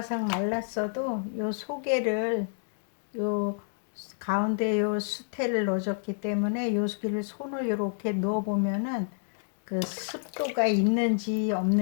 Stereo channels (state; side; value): silent; right; digital silence